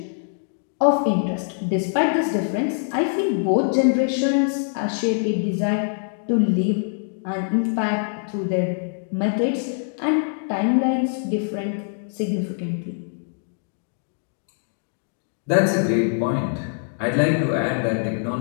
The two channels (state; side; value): silent; right; digital silence